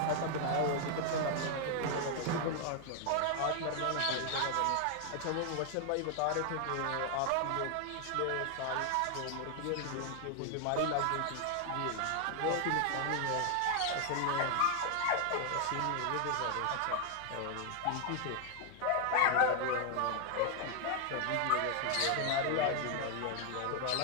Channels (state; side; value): different; both; correlation 0.00